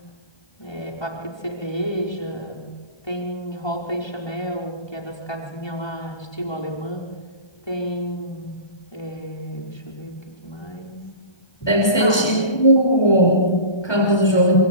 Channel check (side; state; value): right; late; 1.3 ms